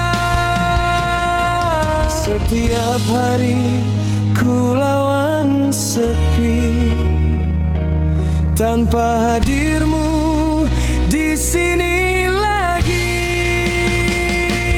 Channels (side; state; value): both; identical; correlation 1.00